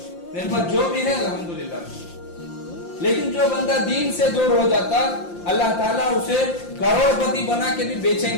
میرے پاس جو بھی ہے الحمدللہ. لیکن جو بندہ دین سے دور ہو جاتا اللہ تعالیٰ اسے کروڑ پتی بنا کے بھی بے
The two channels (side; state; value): right; late; 5.7 ms